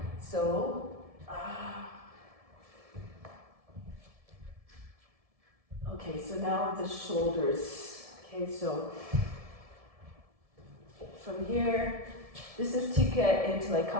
So. Okay. So now the shoulders. Okay. So from here, this is to get into like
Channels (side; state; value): left; late; 1.7 ms